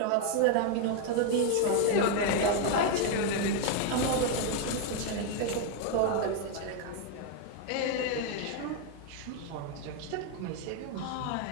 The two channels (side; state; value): both; different; correlation 0.01